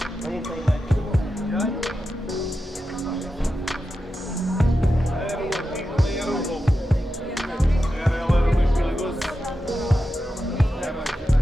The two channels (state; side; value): normal; both; correlation 0.90